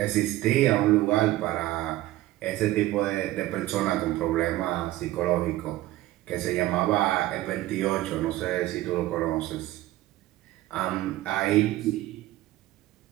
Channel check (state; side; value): quieter; left; 16.4 dB